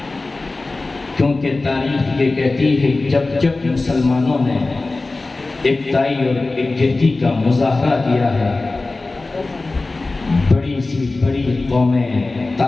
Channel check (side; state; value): right; quieter; 3.3 dB